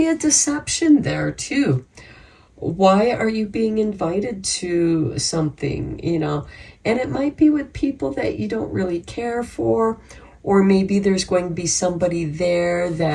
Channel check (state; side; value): identical; both; correlation 1.00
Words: a deception there too. Why are you being invited to something, And it might be with people that you don't really care for, or maybe there's going to be somebody there